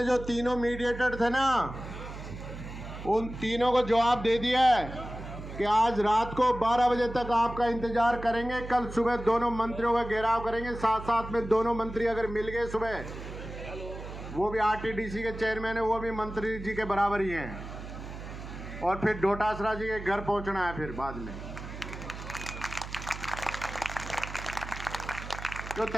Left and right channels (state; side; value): noise; right; hum, 10 dB below the sound